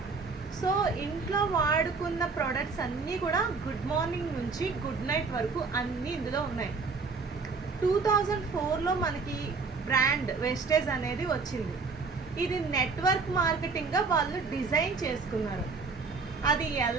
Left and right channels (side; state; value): left; quieter; 4.5 dB